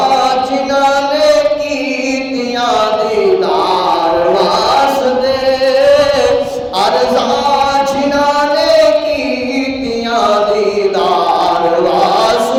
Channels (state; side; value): identical; both; correlation 1.00